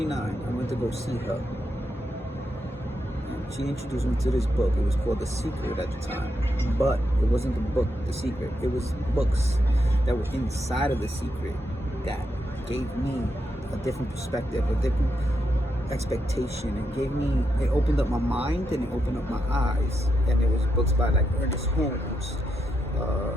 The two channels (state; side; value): normal; both; correlation 0.83